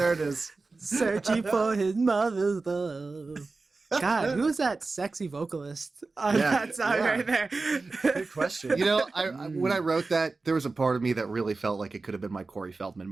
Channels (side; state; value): left; quieter; 3.8 dB